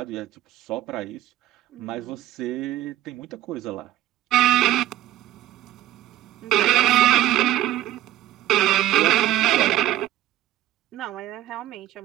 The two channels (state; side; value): quieter; left; 13.9 dB